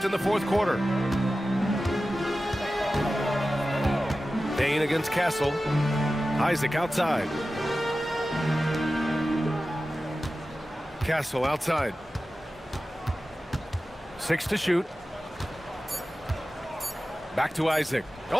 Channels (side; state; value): both; normal; correlation 0.94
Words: in the fourth quarter. Bain against Castle. Isaac outside. Castle outside. 6 to shoot. Back to Isaac.